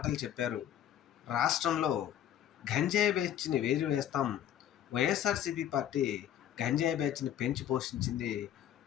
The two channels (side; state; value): right; quieter; 10.8 dB